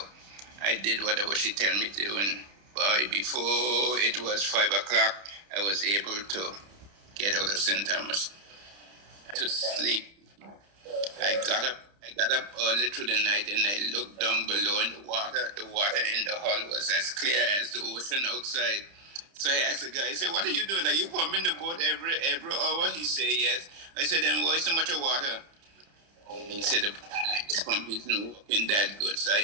I did whatever she told me to, and before it was 5 o'clock, I was able to get out of St. Thomas to sleep. I got up early through the night, and I looked down below in the water. The water in the hull was as clear as the ocean outside. So I asked the guy, I said, "What are you doing? Are you pumping the boat every hour?" He said, "Yes." I said, "Then why so much of water?" He said, "The pump isn't working that good." So I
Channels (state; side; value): late; left; 30 ms